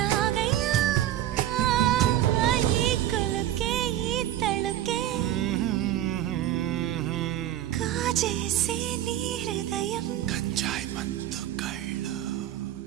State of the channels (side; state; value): left; quieter; 12.5 dB